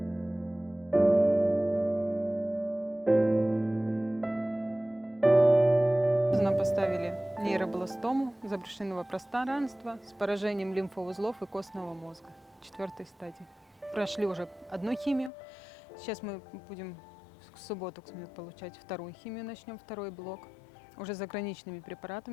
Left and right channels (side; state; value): right; drops out; at 15.3 s